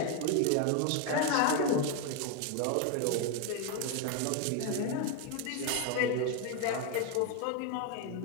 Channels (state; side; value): different; both; correlation 0.01